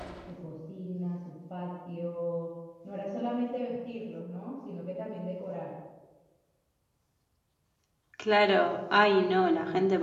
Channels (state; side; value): identical; both; correlation 1.00